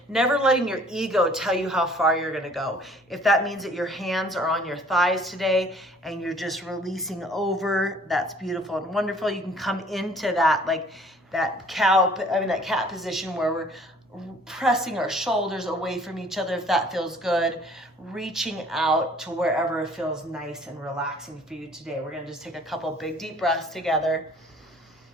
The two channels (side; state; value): both; normal; correlation 0.55